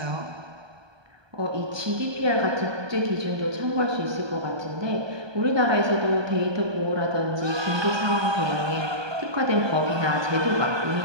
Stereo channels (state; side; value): late; left; 1.2 ms